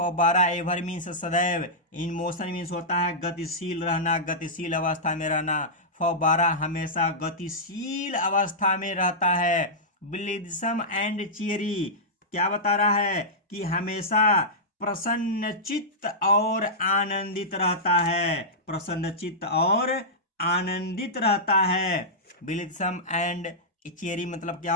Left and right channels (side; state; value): both; normal; correlation -0.12